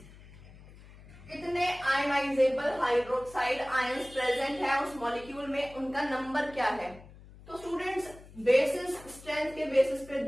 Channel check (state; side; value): noise; left; hum, 20 dB below the sound